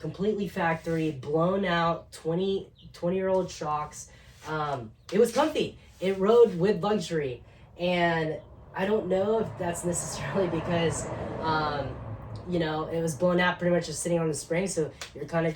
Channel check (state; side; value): identical; both; correlation 1.00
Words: factory, blown out 20-year-old shocks, it was comfy. It rode with luxury. And I don't know if that's necessarily because it was blown out pretty much just sitting on the spring, so you're kind of